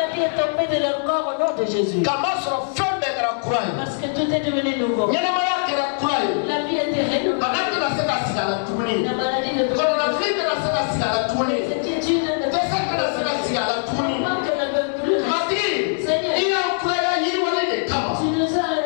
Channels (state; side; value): silent; right; digital silence